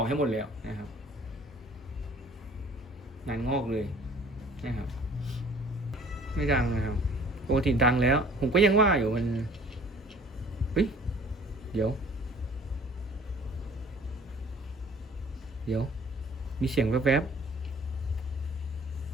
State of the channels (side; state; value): both; normal; correlation 0.51